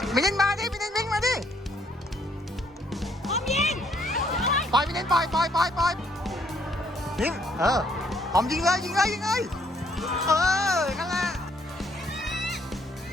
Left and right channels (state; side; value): normal; both; correlation 0.68